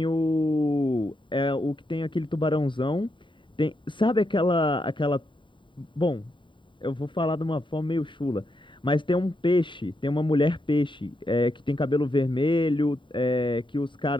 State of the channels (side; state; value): right; late; 0.23 ms